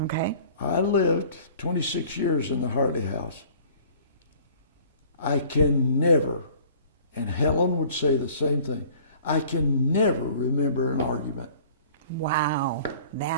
Okay. I lived 26 years in the Hartley House. I can never, and Helen would say the same thing, I can never remember an argument. Wow,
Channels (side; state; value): both; inverted; correlation -0.50